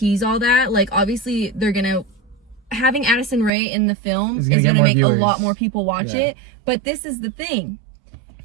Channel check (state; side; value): drops out; left; at 3.5 s